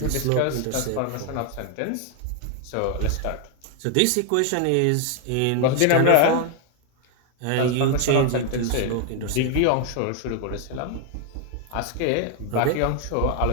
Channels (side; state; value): both; different; correlation 0.00